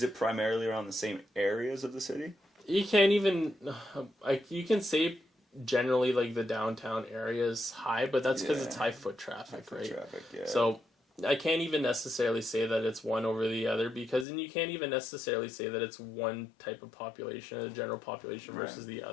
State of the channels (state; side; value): drops out; right; at 14.2 s